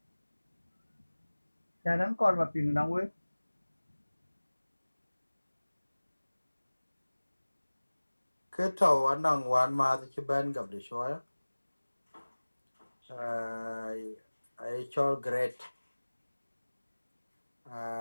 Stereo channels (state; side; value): inverted; both; correlation -1.00